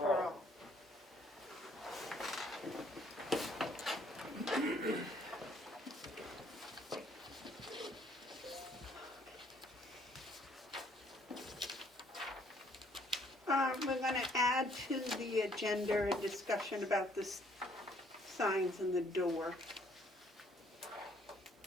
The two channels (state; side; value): normal; both; correlation 0.64